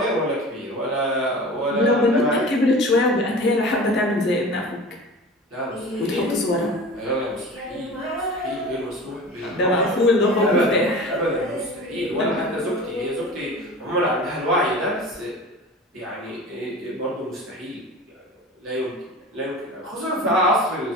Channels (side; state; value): both; normal; correlation 0.36